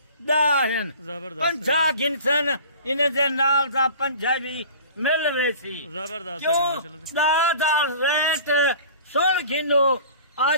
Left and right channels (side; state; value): both; inverted; correlation -0.43